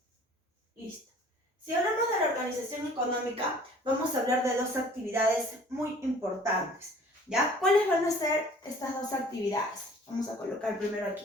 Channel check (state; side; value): normal; both; correlation 0.51